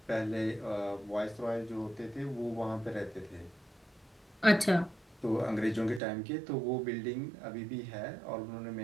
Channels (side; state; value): left; drops out; at 6.0 s